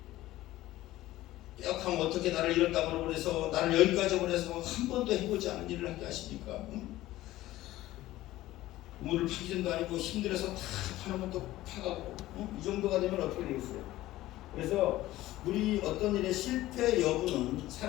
뼈하면 어떻게 나를 이런 땅으로 보내서 나를 여기까지 보내서 한 번도 해보지 않은 일을 하게 하십니까? 우물을 파기 전도 아니고 힘들어서 다 파놓으면 또 파가고 이 정도가 되면 어떻게 되겠어요? 그래서 우리 어떤 일의 실패 여부는 그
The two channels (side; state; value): right; quieter; 16.1 dB